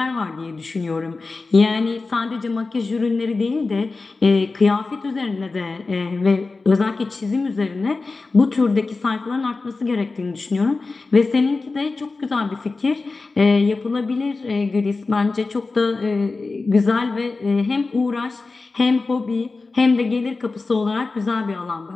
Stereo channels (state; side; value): quieter; right; 3.8 dB